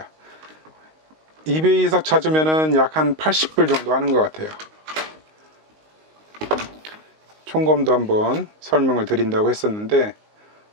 이베이에서 찾으면은 약 한 80불 정도 하는 것 같아요. 총검도 한번 설명을 드린다고 했었는데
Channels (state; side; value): late; left; 19 ms